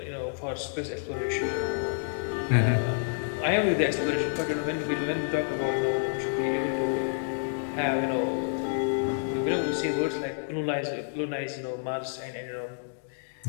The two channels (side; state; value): right; silent; digital silence